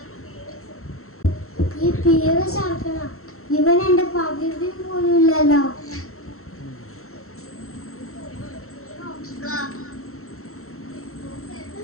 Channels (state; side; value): late; right; 0.63 ms